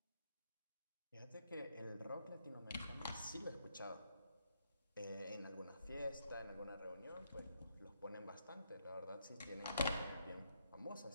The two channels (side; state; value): both; inverted; correlation -0.76